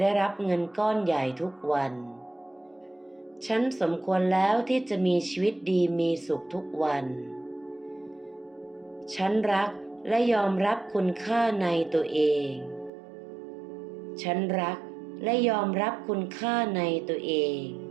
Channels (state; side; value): drops out; left; at 12.9 s